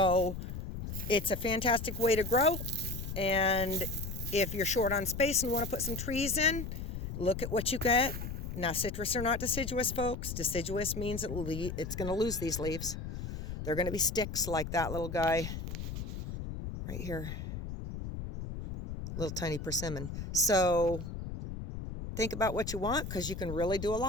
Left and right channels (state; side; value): noise; left; rumble, 6 dB below the sound